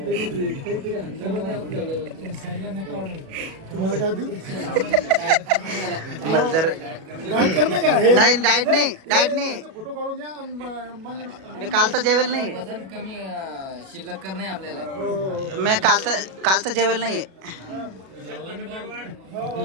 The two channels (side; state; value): left; late; 37 ms